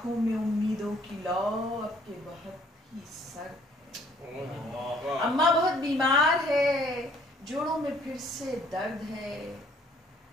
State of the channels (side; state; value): both; normal; correlation 0.60